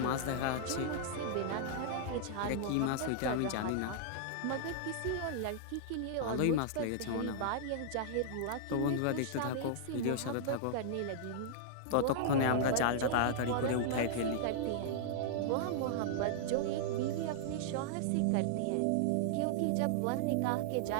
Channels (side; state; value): both; different; correlation -0.01